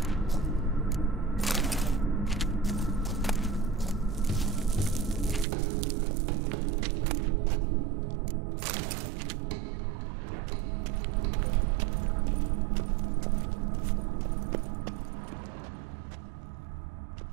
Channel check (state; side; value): drops out; left; at 5.5 s